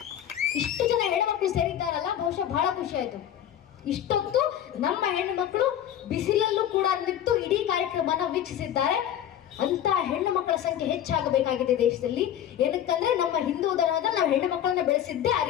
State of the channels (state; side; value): quieter; right; 10.5 dB